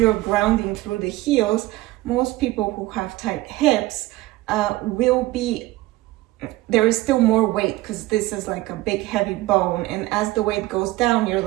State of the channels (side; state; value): left; quieter; 18.1 dB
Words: grounding through the heels, most people who have tight hips will be, there is still more weight because this is like a big heavy bone, and as the weight goes down, you're